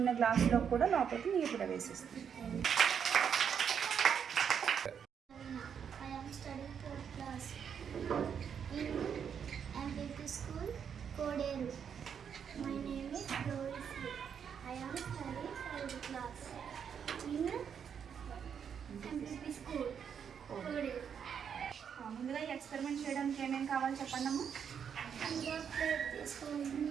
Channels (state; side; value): quieter; left; 7.6 dB